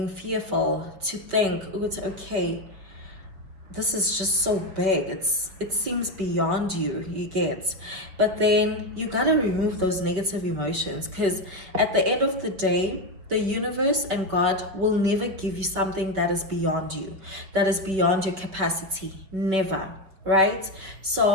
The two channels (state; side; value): late; left; 5.2 ms